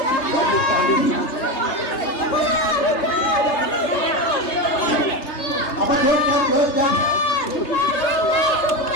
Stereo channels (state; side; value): late; right; 3.3 ms